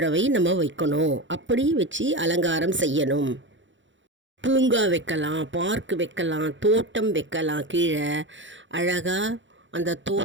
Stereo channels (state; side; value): late; left; 0.55 ms